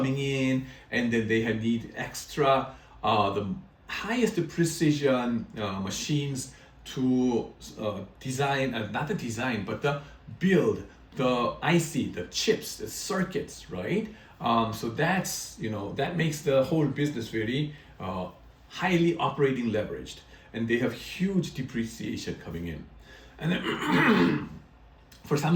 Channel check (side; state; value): both; identical; correlation 1.00